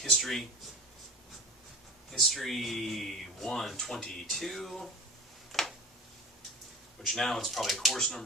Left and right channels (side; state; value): both; normal; correlation 0.35